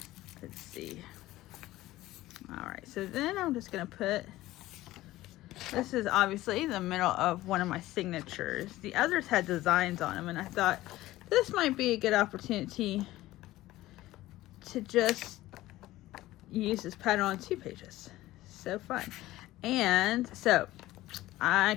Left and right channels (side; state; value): right; quieter; 16.5 dB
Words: Let's see. Alright, so then I'm just going to put, this is obviously the middle of one of my signatures. The others had designs on them, and I thought this might be a good opportunity to just use this pattern on 2 pages. So fun. And so I